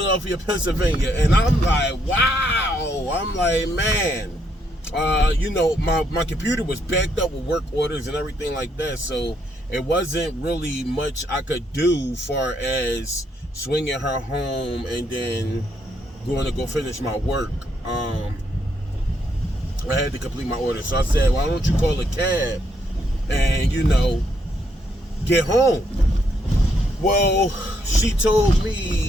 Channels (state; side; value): normal; both; correlation 0.75